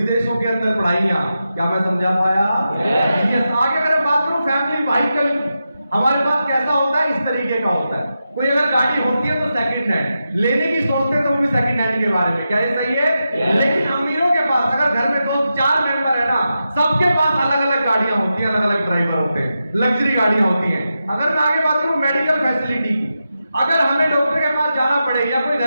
के अंदर पढ़ाइयां। क्या मैं समझा पाया? आगे अगर बात करूं फैमिली व्हीकल, हमारे पास कैसा होता है, इस तरीके का होता है। कोई अगर गाड़ी होती है तो सेकंड हैंड लेने की सोचते हैं, तो वो भी सेकंड हैंड के बारे में। क्या ये सही है? लेकिन अमीरों के पास, अगर घर में 2-4 मेंबर है ना, सबके पास अलग अलग गाड़ियां होती हैं, अलग अलग ड्राइवर होते हैं, लग्जरी गाड़ियां होती हैं। अगर मैं आगे बात करूं मेडिकल फैसिलिटी की, अगर हमें डॉक्टर के पास जाना पड़े, या कोई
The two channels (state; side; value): inverted; both; correlation -0.89